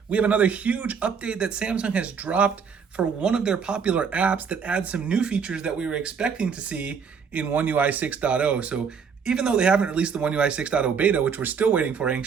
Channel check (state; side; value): quieter; left; 6.3 dB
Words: we have another huge update that Samsung has dropped for one of their popular apps that adds some new features that we were expecting to see in One UI 6.0. So even though they haven't released the One UI 6.0 beta, which we're still waiting for